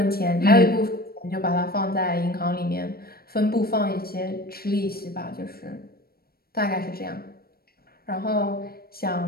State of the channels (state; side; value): late; right; 0.44 ms